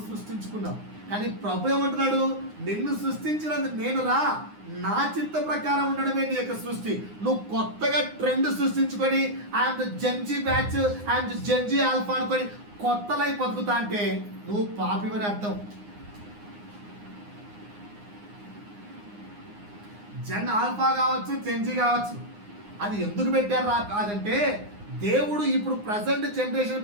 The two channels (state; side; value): late; left; 9.7 ms